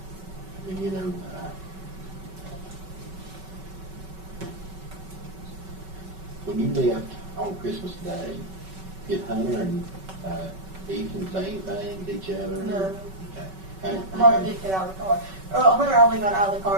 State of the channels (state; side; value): late; left; 5.3 ms